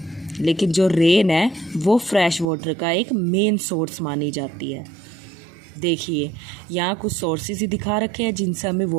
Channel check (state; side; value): drops out; left; at 2.5 s